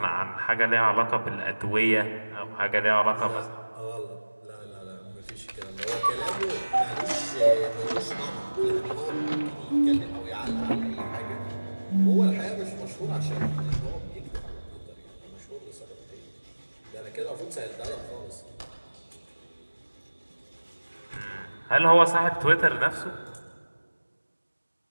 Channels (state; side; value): inverted; both; correlation -1.00